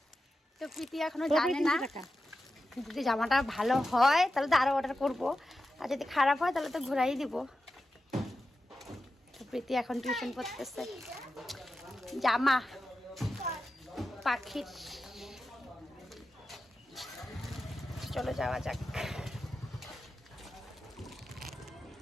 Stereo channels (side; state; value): both; normal; correlation 0.91